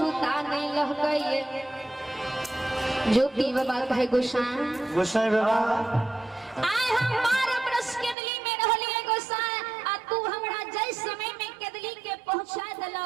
नहीं लह गइए ज्योति बाबा कहे गोसाई बाबा आय हम 12 बरस केदली में रहलिए गोसाई आ तू हमरा जय समय में केदली के पहुंचा देलो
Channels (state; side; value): drops out; left; at 8.2 s